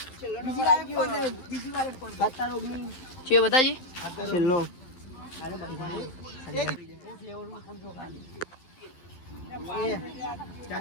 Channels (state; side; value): late; right; 11 ms